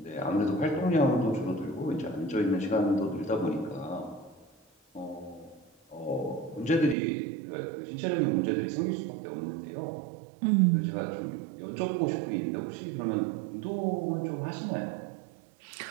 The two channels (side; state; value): left; drops out; at 7.0 s